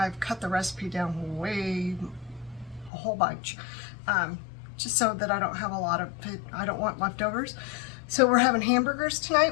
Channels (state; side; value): drops out; right; at 2.9 s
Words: cut the recipe down a whole bunch, just so that I don't have I don't want leftovers. So we're having hamburgers